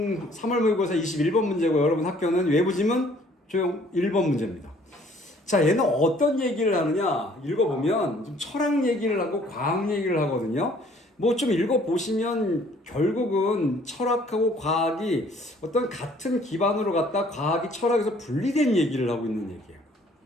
3월 모의고사 21번 문제고, 여러분 학교는 외부 지문 조용 1번 문제입니다. 자, 얘는 어떤 얘기를 하느냐? 읽어보면 좀 철학 얘기를 하고 과학 얘기를 하거든요. 뭐 좀 읽어보시면 결국은 철학하고 과학이 어떤 같은 기반으로 갖다 과학이 철학에서 분리된 얘기를 하고 있는 얘기예요.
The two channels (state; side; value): normal; both; correlation 0.58